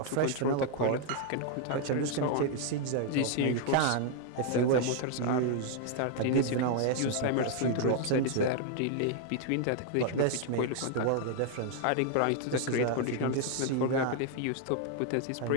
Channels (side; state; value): both; different; correlation 0.00